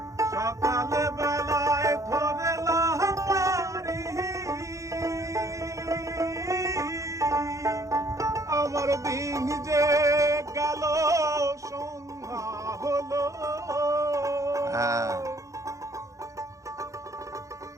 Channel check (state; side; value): late; left; 0.15 ms